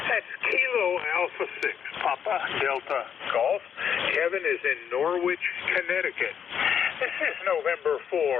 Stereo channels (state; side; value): quieter; right; 8.0 dB